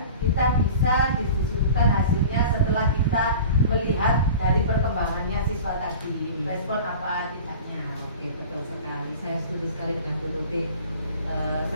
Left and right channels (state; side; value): inverted; both; correlation -0.39